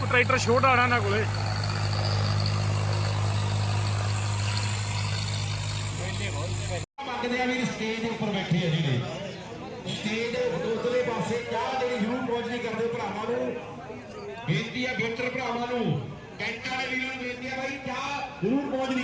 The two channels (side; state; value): both; identical; correlation 1.00